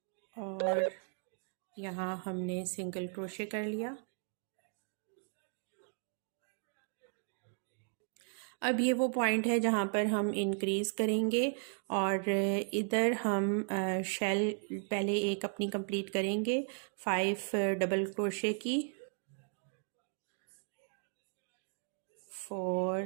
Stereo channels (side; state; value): left; silent; 54 dB below the other